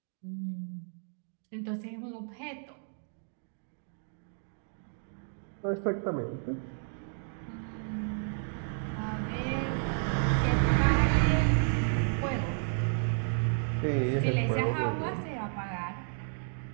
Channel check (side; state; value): left; silent; 56 dB below the other